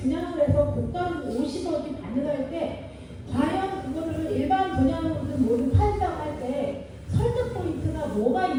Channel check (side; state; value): both; identical; correlation 1.00